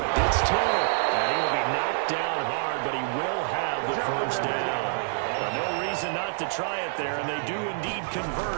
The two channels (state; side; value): silent; left; 60 dB below the other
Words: It's Taylor. And he will be knocked down hard, but he will have the 1st down. No reason not to try it there, and they do indeed